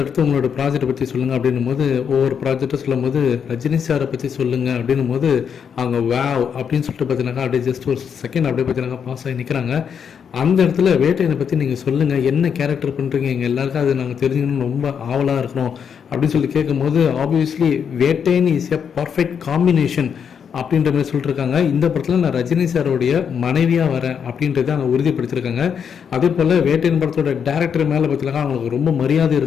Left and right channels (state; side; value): quieter; right; 7.3 dB